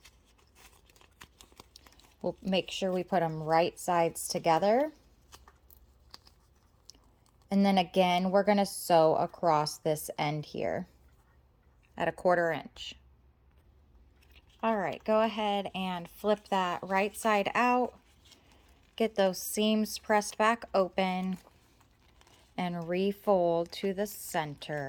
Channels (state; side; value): identical; both; correlation 1.00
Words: We'll make sure we put them right sides together. And then again, we're gonna sew across this end here at 1/4 inch. All right, go ahead and flip that right side out. Get those seams pressed back open and refold to the